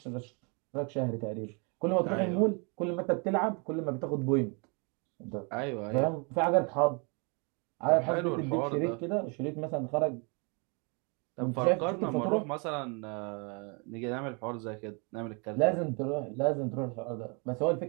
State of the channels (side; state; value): left; quieter; 33.7 dB